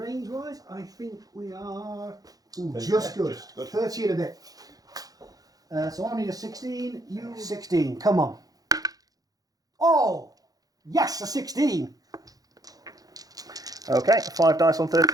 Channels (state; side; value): late; left; 0.18 ms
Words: I think we are just good. 30 and a bit. So I need a 16. You 16. Come on. Oh! Yes, a 16! Okay, 5 dice on